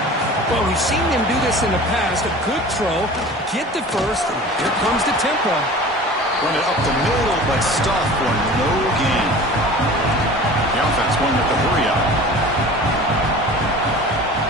Well, we've seen them do this in the past. A good throw, get the first, and here comes the tempo. Run it up the middle, but stuffed for no gain. The offense going with the hurry-up.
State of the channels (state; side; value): normal; both; correlation 0.40